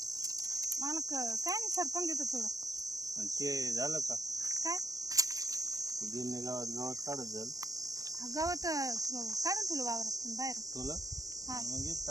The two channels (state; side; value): late; left; 0.17 ms